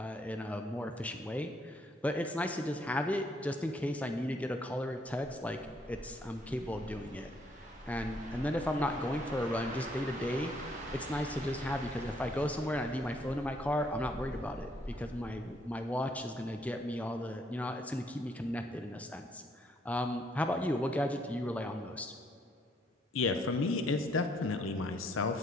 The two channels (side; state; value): both; normal; correlation 0.68